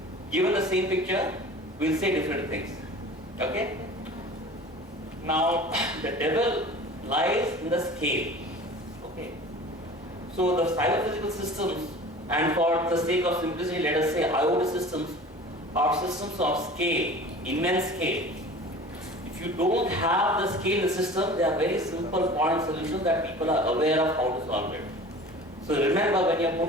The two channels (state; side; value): normal; both; correlation 0.41